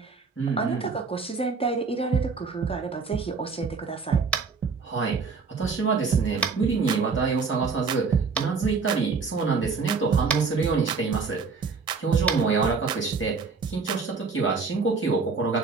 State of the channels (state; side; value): quieter; left; 4.8 dB